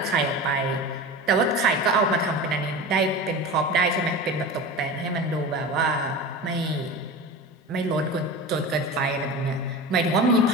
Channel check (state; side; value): normal; both; correlation 0.30